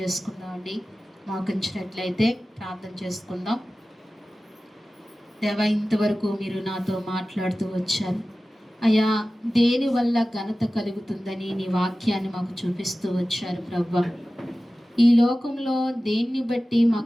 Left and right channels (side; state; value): both; normal; correlation 0.96